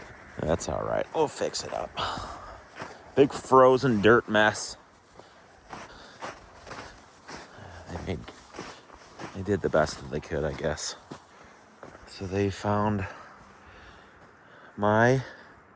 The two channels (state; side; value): identical; both; correlation 1.00